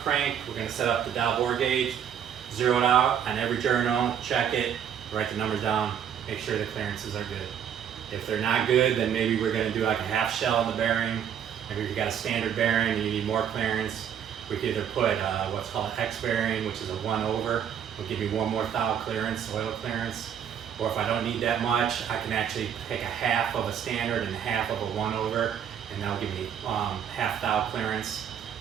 crank, we're going to set up the dial bore gauge, zero it out on every journal, check it, write the numbers down, make sure the clearances are good. If they're not good, then maybe we're going to do like a half shell on the bearing. Maybe if you got a standard bearing and you need more clearance, we could either put what's called an X bearing, which is a 1/over. Will give me one more thou clearance, oil clearance. Or if I don't need that much, I can actually take a half of a standard and half of a 1/over, and that'll give me half thou clearance.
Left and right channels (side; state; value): left; quieter; 8.7 dB